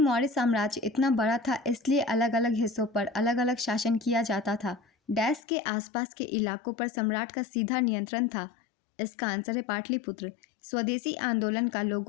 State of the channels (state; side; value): drops out; right; at 5.4 s